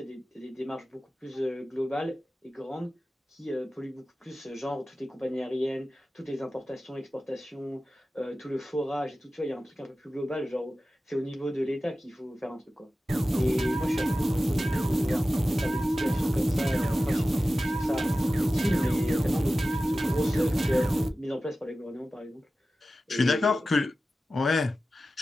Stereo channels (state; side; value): normal; both; correlation 0.94